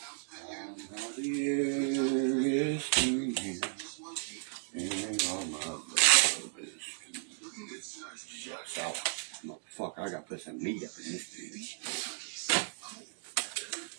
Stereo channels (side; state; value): left; silent; digital silence